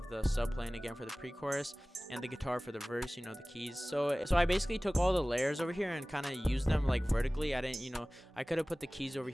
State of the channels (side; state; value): both; normal; correlation 0.98